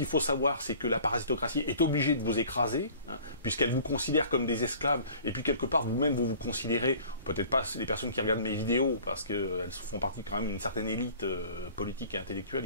faut savoir c'est que la parasitocratie est obligée de vous écraser, puisqu'elle vous considère comme des esclaves, et puis quelque part vous-même vous considérez, peut-être pas les personnes qui regardent mes vidéos parce qu'elles font partie quand même une certaine élite politique et intellectuelle.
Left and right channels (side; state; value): both; inverted; correlation -0.48